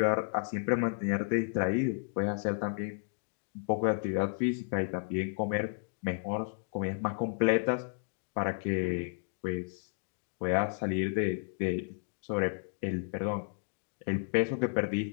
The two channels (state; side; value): silent; right; digital silence